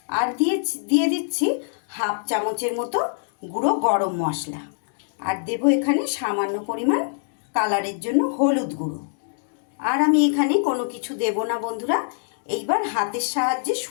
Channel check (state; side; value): silent; right; digital silence